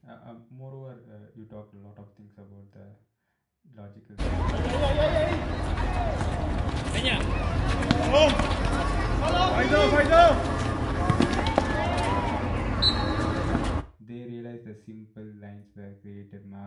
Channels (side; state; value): both; identical; correlation 1.00